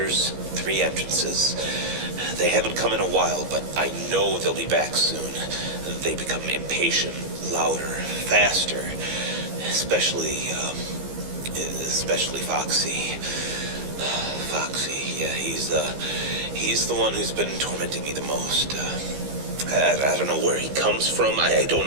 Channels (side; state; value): left; late; 15 ms